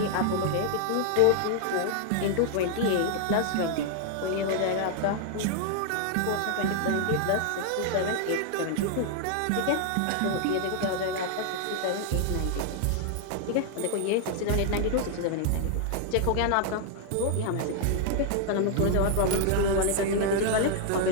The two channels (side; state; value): both; different; correlation 0.00